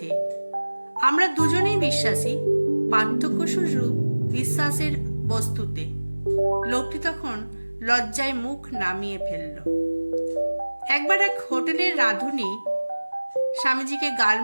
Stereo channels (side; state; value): both; inverted; correlation -1.00